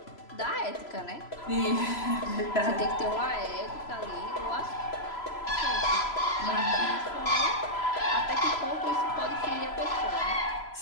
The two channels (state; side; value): late; right; 3.0 ms